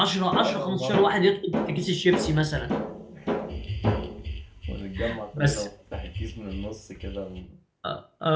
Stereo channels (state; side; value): identical; both; correlation 1.00